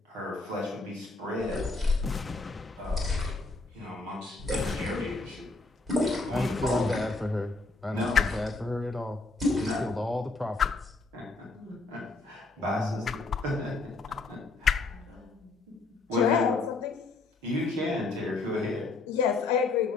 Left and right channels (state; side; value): quieter; right; 3.5 dB